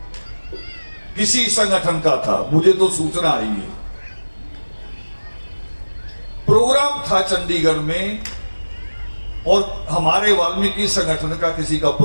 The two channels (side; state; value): both; inverted; correlation -1.00